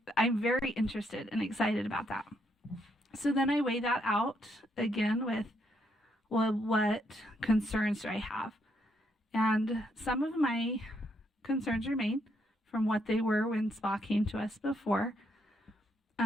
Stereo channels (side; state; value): both; normal; correlation 0.75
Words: I'm very interested and excited about that. So then I weigh that out again with, well, what concerns do I have? And some of my concerns remain from what they were when SPA came to us before.